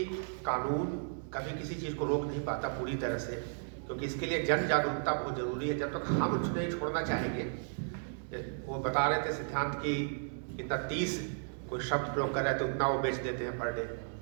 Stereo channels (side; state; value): left; silent; digital silence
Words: कानून कभी किसी चीज़ को रोक नहीं पाता पूरी तरह से, क्योंकि इसके लिए जन जागरूकता बहुत ज़रूरी है। जब तक हम उसको नहीं छोड़ना चाहेंगे, वो बता रहे थे सिद्धांत की इतना 30 कोई शब्द प्रयोग कर रहे हैं तो उतना वो बेच देते हैं पर डे।